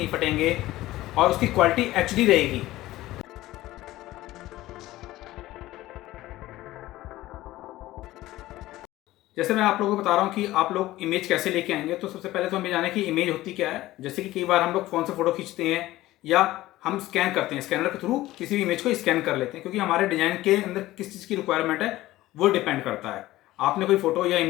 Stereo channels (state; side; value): quieter; right; 16.6 dB